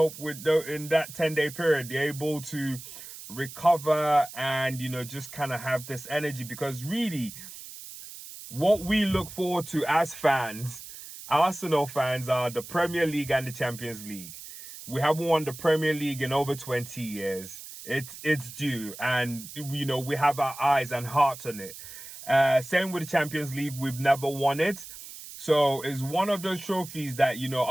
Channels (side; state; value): right; noise; hiss, 14 dB below the sound